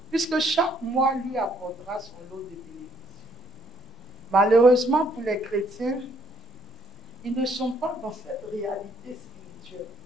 puisque chaque mois lui apportera son lot de bénédictions. Malheureusement pour les chrétiens, ils ne sont pas dans cette réalité spirituelle.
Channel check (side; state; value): both; normal; correlation 0.67